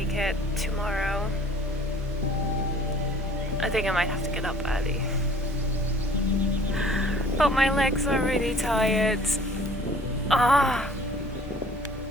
it tomorrow. I think I might have to get up early. But my legs are really tired. Ah!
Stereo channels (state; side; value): normal; both; correlation 0.52